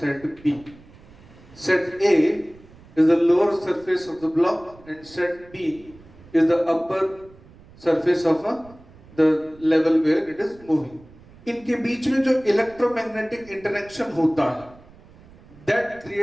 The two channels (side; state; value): right; noise; rumble, 24 dB below the sound